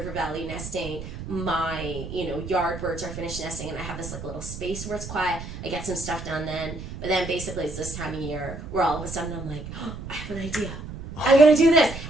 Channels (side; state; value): right; noise; rumble, 10 dB below the sound